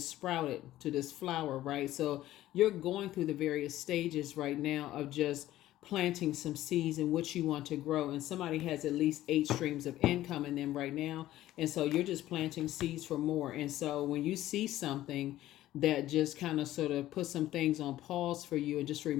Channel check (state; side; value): quieter; right; 14.5 dB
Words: sprouted to this flower, right? So you're going through the various stages right now of just planting some seeds in what you want to grow. And somebody has at least 8 streams of income in them right now. And so you're just planting seeds for more. And so when you see something that just kind of sort of put some things on pause for you and just